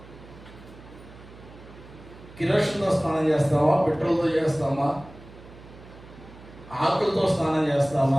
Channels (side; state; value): right; noise; hum, 19 dB below the sound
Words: కిరోషన్తో స్నానం చేస్తామా? పెట్రోల్తో చేస్తామా? ఆకులతో స్నానం